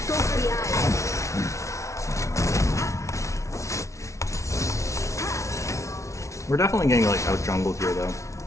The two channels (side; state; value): right; late; 0.14 ms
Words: Go for the eye. We're definitely getting like out jungled here though.